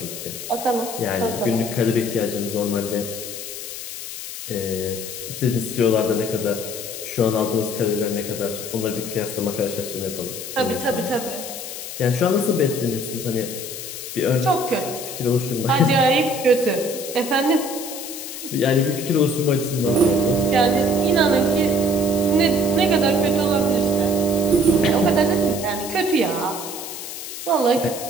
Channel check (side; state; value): left; noise; hiss, 9 dB below the sound